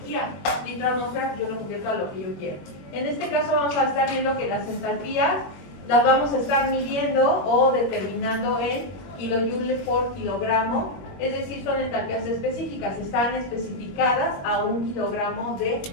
Litro-atmósfera yo lo convierto a lo que yo quiero. En este caso vamos a estar viendo que las entalpías las vamos a estar midiendo o determinando en kilojoules por kilogramo, es decir, son entalpías específicas, están especificadas a 1 kilogramo de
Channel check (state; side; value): late; right; 21 ms